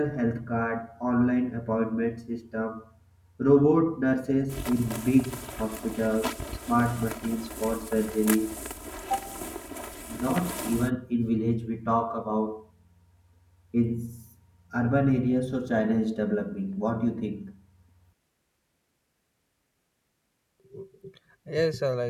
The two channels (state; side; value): identical; both; correlation 1.00